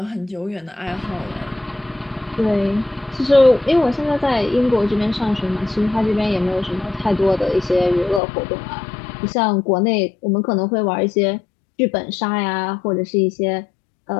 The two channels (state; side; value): drops out; right; at 8.2 s